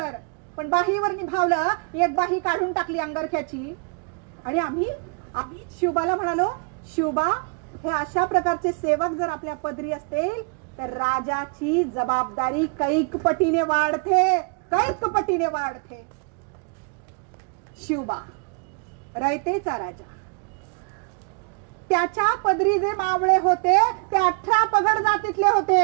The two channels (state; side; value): quieter; left; 36.6 dB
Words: पण बाहीवर निभावलं. एक बाही काढून टाकली अंगरख्याची. आणि आम्ही शिवबाला म्हणालो, शिवबा, हे अशा प्रकारचे सेवक जर आपल्या पदरी असतील तर राजाची जबाबदारी कैक पटीने वाढते. शिवबा रयतेचा राजा, त्याच्या पदरी जे मावळे होते ते 18 पगड जातीतले